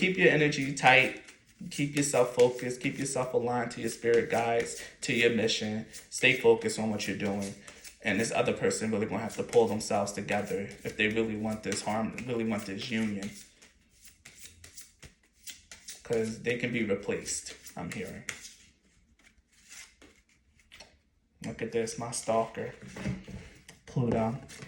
your energy tight. Keep yourself focused. Keep yourself aligned to your spirit guides, to your mission. Stay focused on what you're doing. And this other person really gonna have to pull themselves together if they really want this really want this union. Because they can be replaced, I'm hearing. Look at this, my stalker. Pluto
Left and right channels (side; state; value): both; identical; correlation 1.00